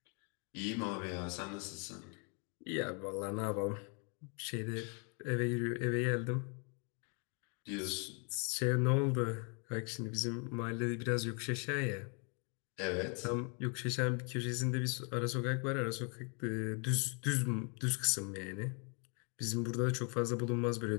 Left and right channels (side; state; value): right; quieter; 37.2 dB